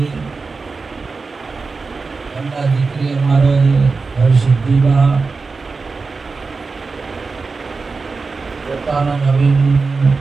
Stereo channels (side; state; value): left; quieter; 4.3 dB